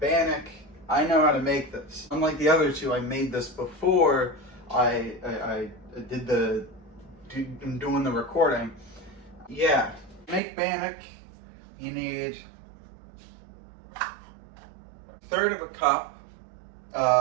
I know how to make this. Unlike the other two, I made this before I'm doing the recording. Yeah, to make bannock, you need a third of a cup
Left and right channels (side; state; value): left; drops out; at 10.4 s